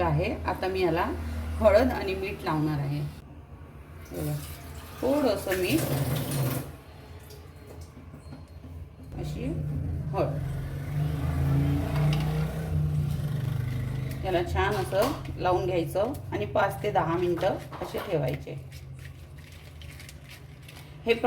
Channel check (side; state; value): both; identical; correlation 1.00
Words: आहे. आता मी याला हळद आणि मीठ लावणार आहे. बघा, थोडंसं मीठ, अशी हळद. याला छान असं लावून घ्यायचं आणि 5 ते 10 मिनिटं असे ठेवायचे. हे